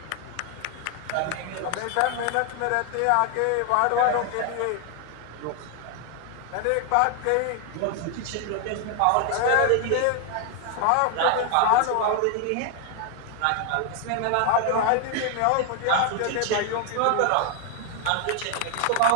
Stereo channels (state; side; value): different; both; correlation 0.00